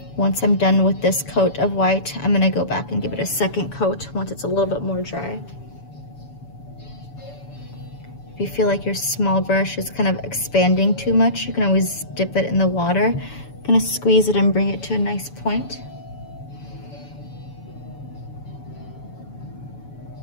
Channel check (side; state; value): right; late; 7.0 ms